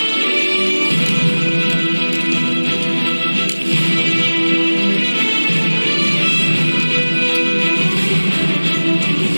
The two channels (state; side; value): inverted; both; correlation -1.00